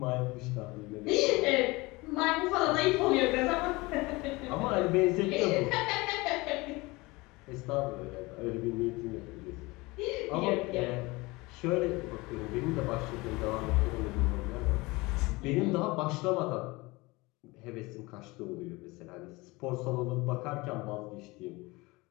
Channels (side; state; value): right; quieter; 23.1 dB